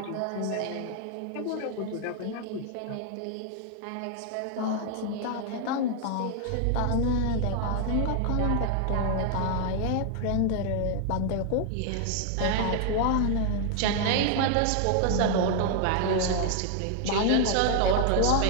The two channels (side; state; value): both; different; correlation 0.00